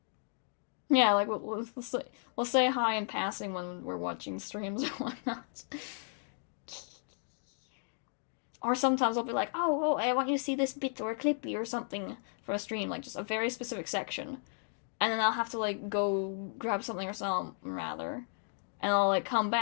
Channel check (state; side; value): silent; right; 55 dB below the other